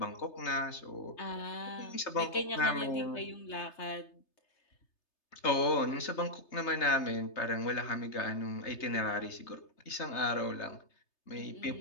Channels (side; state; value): right; late; 3.3 ms